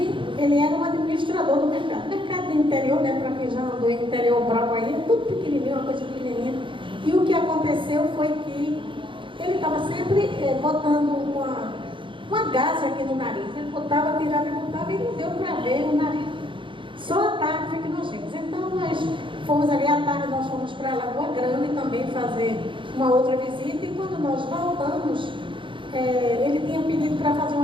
ele era um administrador do mercado. Mercado do interior, né, para quem já andou em interior bravo aí, tudo pequenininho, uma coisa pequenininha. E o que aconteceu foi que ele estava sempre botando uma gase aqui no nariz. Ele botava, tirava e botava, e não deu para ver o nariz. Só à tarde foi que nós vimos. Então nós fomos ali à tarde, nós fomos para Lagoa Grande também fazer uma outra visita, e quando nós voltamos, ele tinha pedido para fazer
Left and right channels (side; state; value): left; late; 0.24 ms